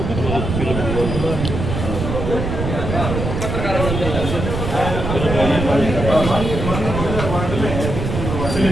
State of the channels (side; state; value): right; noise; rumble, 3 dB below the sound